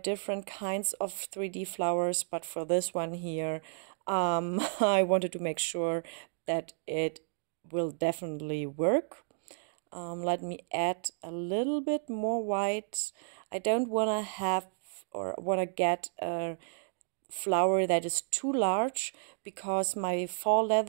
kinds of 3D flowers, but for this one here, I wanted to make sure that it will definitely work. Let me add a little bit more white. I don't want to have or want to get a flower that is too large because my faux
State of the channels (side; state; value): left; silent; digital silence